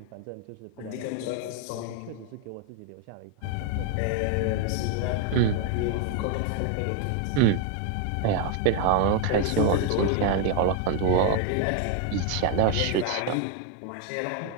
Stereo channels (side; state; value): both; different; correlation 0.01